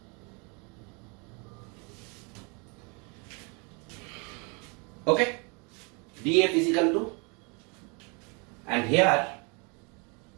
Okay, df is equal to, and here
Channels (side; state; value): left; quieter; 32.6 dB